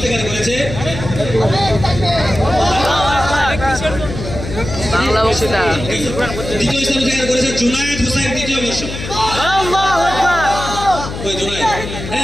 করেছে বাংলা বক্তৃতা দ্বিতীয় স্থান অধিকার করেছে জুনায়েদ হোসেন দ্বিতীয় বর্ষ আল্লাহু আকবার ওই জুনায়েদ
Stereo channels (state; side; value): noise; left; hum, 8 dB below the sound